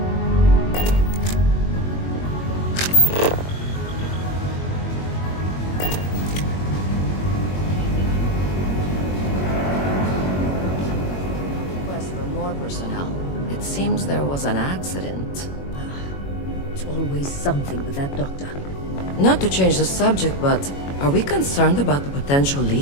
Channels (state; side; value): late; right; 21 ms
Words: personnel. It seems there was an accident. It's always something with that doctor. Not to change the subject, but are we concerned about the potential